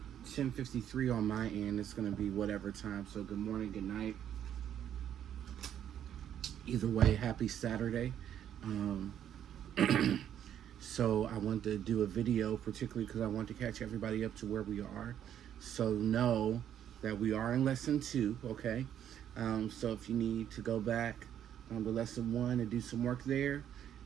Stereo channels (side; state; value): left; quieter; 10.0 dB